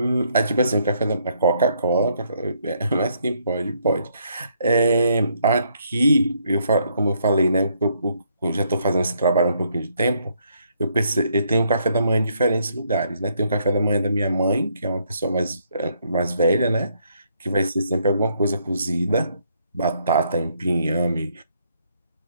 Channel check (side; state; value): both; inverted; correlation -0.72